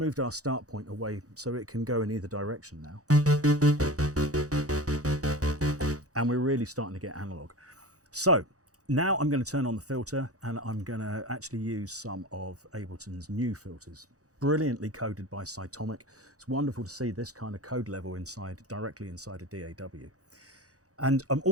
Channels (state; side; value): late; left; 0.66 ms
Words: our start point away so it can go in either direction now. And we're really starting to get analog. So now I'm going to turn on the filter and I'm going to actually use some of Ableton's new filters, brilliantly coded by Cytomic. It's wonderful to see this kind of code level directly inside a DAW. And I'm